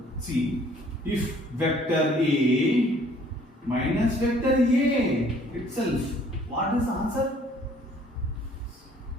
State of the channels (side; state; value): both; normal; correlation 0.58